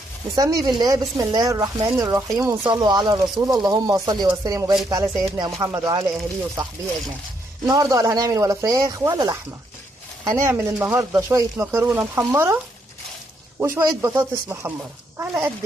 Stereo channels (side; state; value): both; normal; correlation 0.74